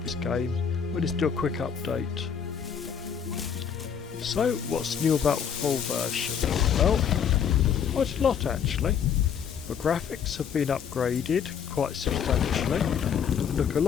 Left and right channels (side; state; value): right; quieter; 7.6 dB